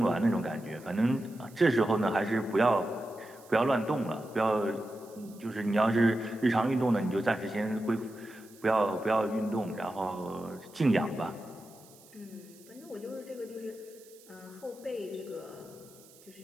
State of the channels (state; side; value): noise; right; hiss, 24 dB below the sound